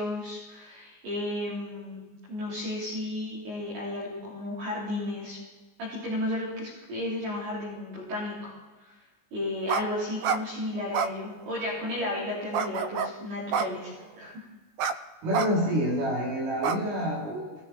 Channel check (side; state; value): left; late; 19 ms